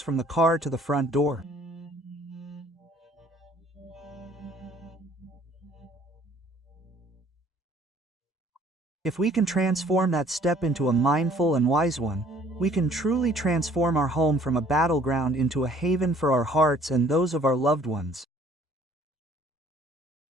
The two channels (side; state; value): both; normal; correlation 0.57